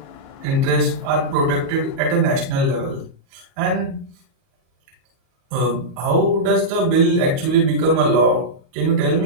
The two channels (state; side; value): late; left; 38 ms